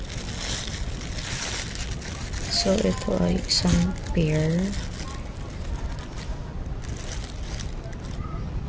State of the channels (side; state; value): both; identical; correlation 1.00